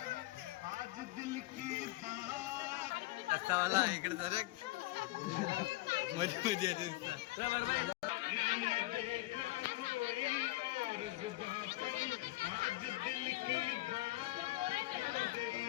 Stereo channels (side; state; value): right; quieter; 19.1 dB